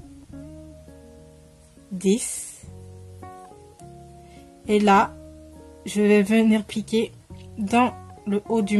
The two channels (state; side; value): identical; both; correlation 1.00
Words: 10. Et là, je vais venir piquer dans le haut du